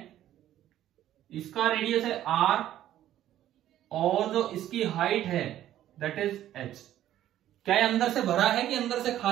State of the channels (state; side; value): quieter; left; 12.5 dB